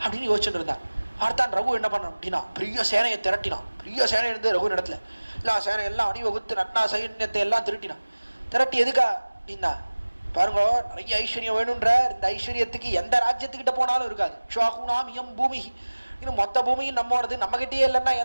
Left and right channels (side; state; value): both; inverted; correlation -1.00